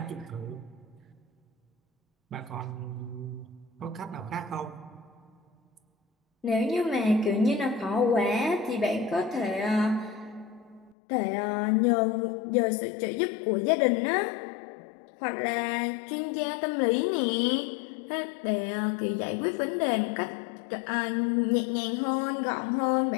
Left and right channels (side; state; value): right; drops out; at 11.0 s